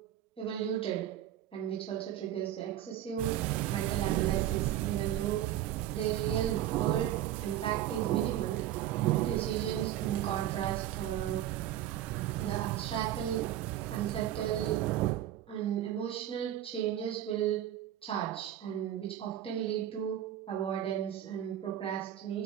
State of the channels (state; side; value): quieter; left; 12.0 dB